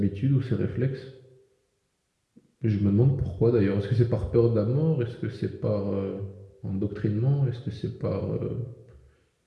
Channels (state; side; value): identical; both; correlation 1.00